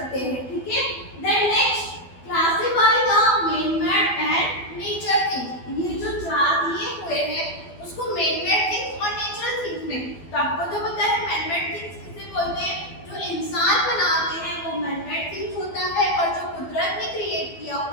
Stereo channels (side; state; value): right; late; 12 ms